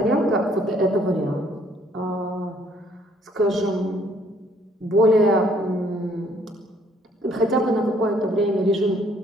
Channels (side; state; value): both; normal; correlation 0.63